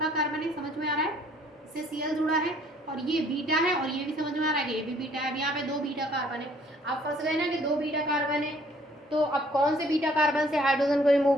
कार्बन है, समझ में आ रहा है, इससे Cl जुड़ा है, और ये बीटा है, और ये भी समझ में आ रहा है कि ये भी बीटा है। अब यहाँ पे 2 बीटा कार्बन है। आप फंस गए ना कि 2 बीटा कार्बन है, तो अब कौन से बीटा कार्बन से हाइड्रोजन को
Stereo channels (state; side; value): normal; both; correlation 0.60